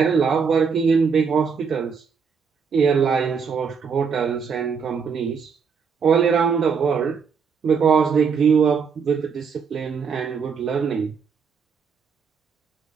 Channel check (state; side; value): quieter; left; 6.0 dB